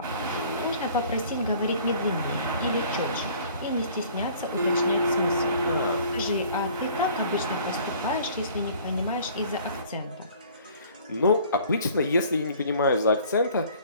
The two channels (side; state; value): both; inverted; correlation -0.52